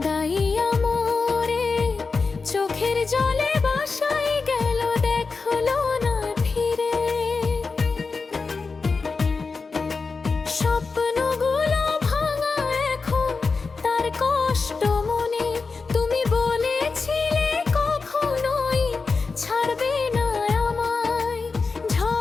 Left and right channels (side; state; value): right; quieter; 4.4 dB